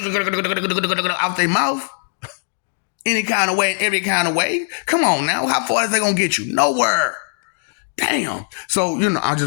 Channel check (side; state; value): right; silent; digital silence